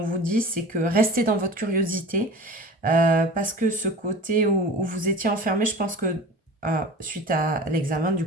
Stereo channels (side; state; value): both; normal; correlation 0.38